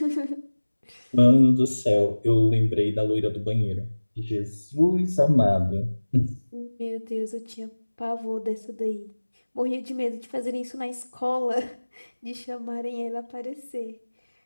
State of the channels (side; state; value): both; inverted; correlation -1.00